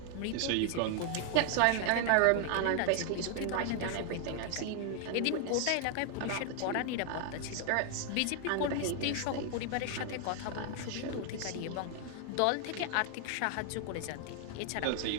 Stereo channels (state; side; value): different; both; correlation 0.00